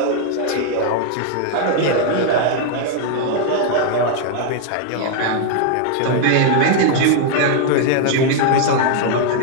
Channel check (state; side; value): different; both; correlation 0.00